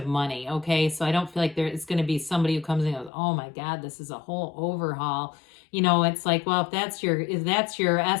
money, okay? So I don't feel like it's going to be somebody who comes in and goes, oh my God, this is a whole overhaul. It's like, well, if that's your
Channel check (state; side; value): drops out; right; at 3.1 s